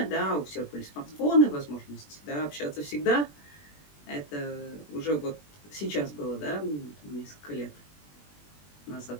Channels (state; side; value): late; right; 20 ms